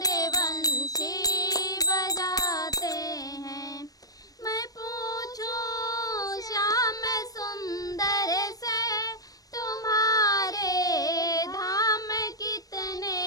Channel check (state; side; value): late; right; 0.18 ms